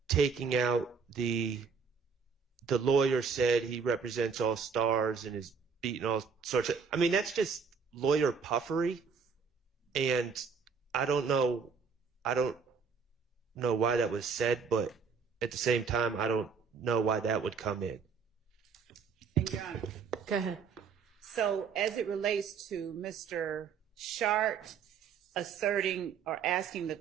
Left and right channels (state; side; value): quieter; left; 5.8 dB